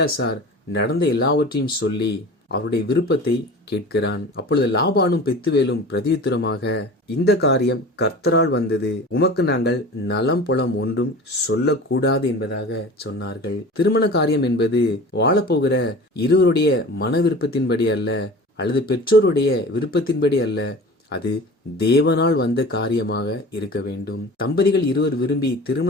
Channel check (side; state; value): both; normal; correlation 0.38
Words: நடந்த எல்லாவற்றையும் சொல்லி அவருடைய விருப்பத்தை கேட்கிறான். அப்பொழுது லாபானும் பெத்துவேலும் பிரதியுத்தரமாக, இந்த காரியம் கர்த்தரால் வந்தது, உமக்கு நாங்கள் நலம் புலம் ஒன்றும் சொல்லக்கூடாது என்பதாக சொன்னார்கள். திருமண காரியம் என்பது வாழப்போகிற இருவருடைய மன விருப்பத்தின்படி அல்ல, அல்லது பெற்றோருடைய விருப்பத்தின்படி அல்ல, அது தேவனால் வந்த காரியமாக இருக்க வேண்டும். தம்பதிகள் இருவர் விரும்பி